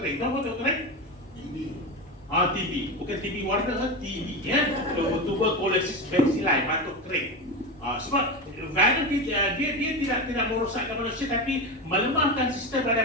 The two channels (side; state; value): both; normal; correlation 0.20